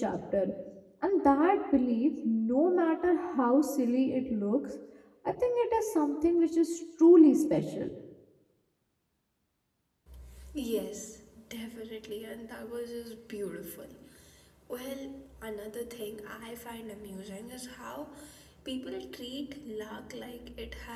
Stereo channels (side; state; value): both; identical; correlation 1.00